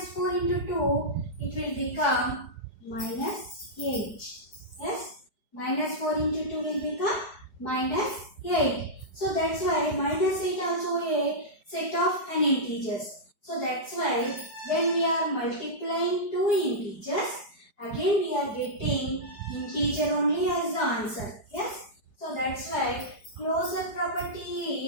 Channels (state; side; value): late; right; 4.9 ms